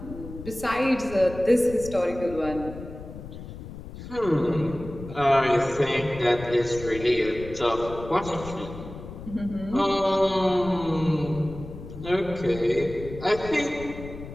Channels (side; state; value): left; noise; rumble, 12 dB below the sound